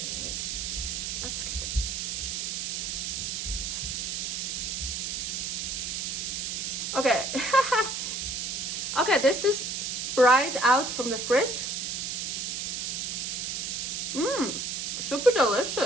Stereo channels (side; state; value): right; noise; hiss, 2 dB below the sound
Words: that's good. Okay, okay, this is right out from the fridge. Super